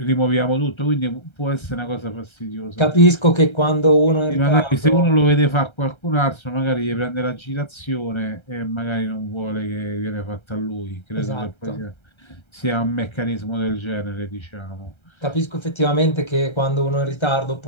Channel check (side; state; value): right; late; 1.3 ms